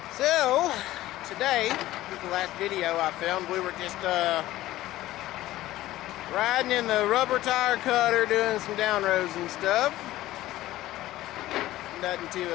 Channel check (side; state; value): right; quieter; 15.6 dB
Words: so today is the last video I filmed. We were just riding in the rubber tire cutter doing some down rows and stuff. Nothing too